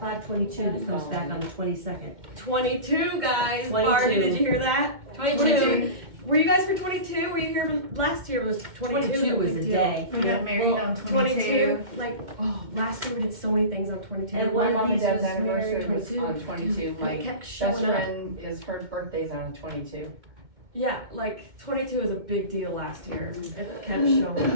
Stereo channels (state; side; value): late; left; 2.1 ms